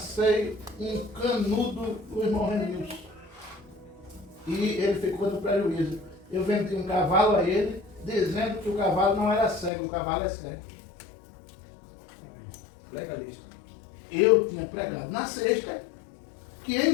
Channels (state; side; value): drops out; right; at 9.7 s